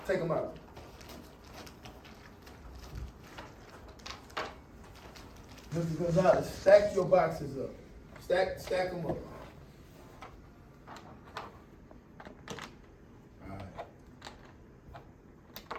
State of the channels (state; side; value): identical; both; correlation 1.00